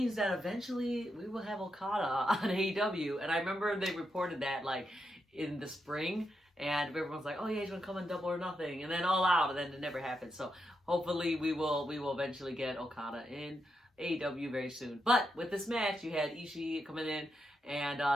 that eventually we will have Okada on AEW. And I remember they reported that like in the spring, and everyone's like, oh yeah, he's gonna come in Double or Nothing, and then All Out, and then it never happened. So hopefully we will eventually get Okada in AEW very soon. But with this match, you had Ishii coming in, and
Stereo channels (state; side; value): normal; both; correlation 0.84